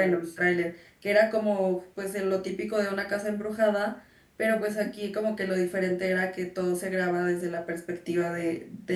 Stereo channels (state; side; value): identical; both; correlation 1.00